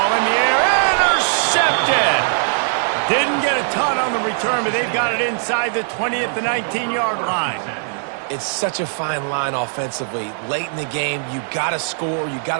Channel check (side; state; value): left; silent; digital silence